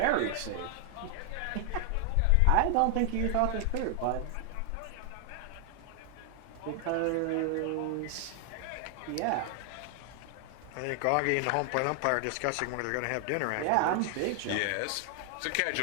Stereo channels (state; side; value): different; both; correlation 0.00